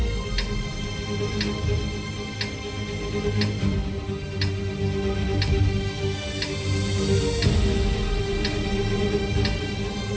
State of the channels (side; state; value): both; identical; correlation 1.00